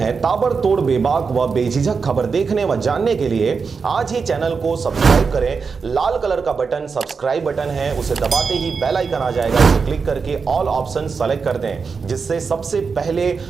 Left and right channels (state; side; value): quieter; left; 5.2 dB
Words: ताबड़तोड़ बेबाक व बेझिझक खबर देखने व जानने के लिए आज ही चैनल को सब्सक्राइब करें। लाल कलर का बटन सब्सक्राइब बटन है, उसे दबाते ही बेल आइकन आ जाएगा, उसे क्लिक करके ऑल ऑप्शन सेलेक्ट कर दें, जिससे सबसे पहले